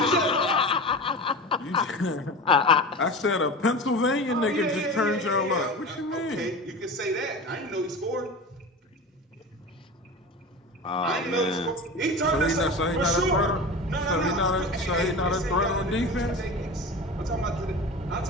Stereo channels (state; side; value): normal; both; correlation 0.30